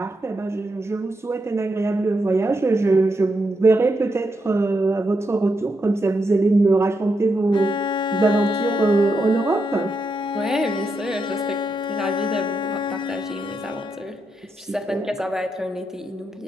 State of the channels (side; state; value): both; normal; correlation 0.83